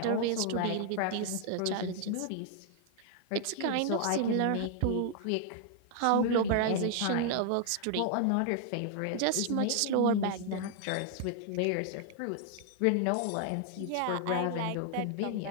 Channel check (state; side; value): different; both; correlation 0.00